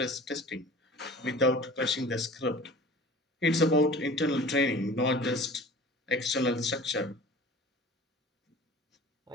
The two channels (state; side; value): normal; both; correlation 0.42